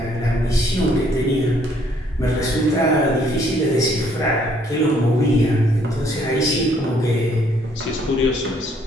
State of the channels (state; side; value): normal; both; correlation 0.65